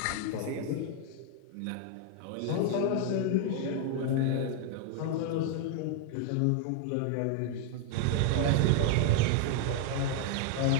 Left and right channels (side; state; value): both; different; correlation 0.00